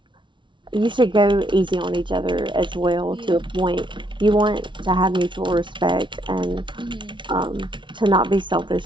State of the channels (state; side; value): late; left; 0.24 ms